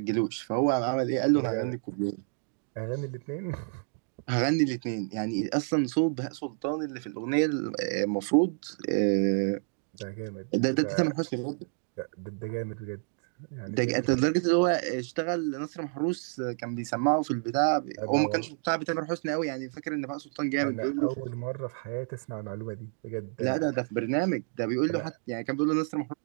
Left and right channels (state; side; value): silent; left; 58 dB below the other